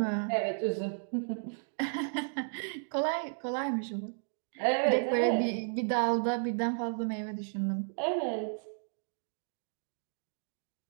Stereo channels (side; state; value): left; silent; digital silence